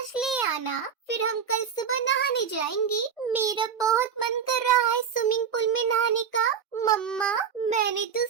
ले आना, फिर हम कल सुबह नहाने जाएंगे। मेरा बहुत मन कर रहा है स्विमिंग पूल में नहाने का। मम्मा, मैंने तो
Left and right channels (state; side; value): quieter; left; 7.2 dB